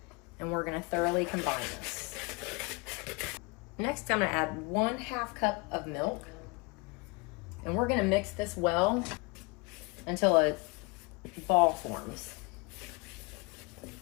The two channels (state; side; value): quieter; right; 27.6 dB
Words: and we're going to thoroughly combine this. Next, I'm going to add 1/2 cup of milk, and we're going to mix this well until a ball forms.